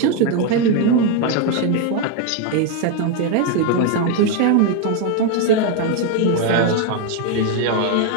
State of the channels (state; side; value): different; both; correlation 0.01